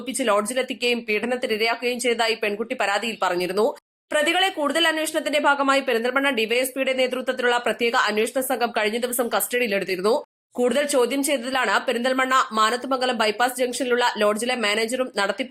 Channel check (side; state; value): both; identical; correlation 1.00